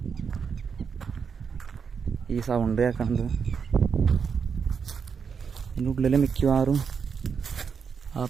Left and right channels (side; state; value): left; quieter; 6.3 dB